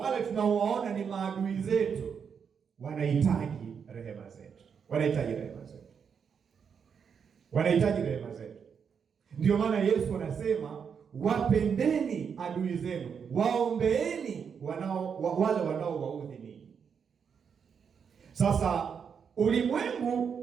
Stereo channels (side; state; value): left; quieter; 6.8 dB